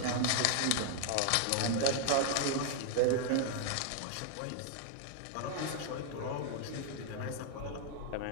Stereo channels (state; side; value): different; both; correlation 0.00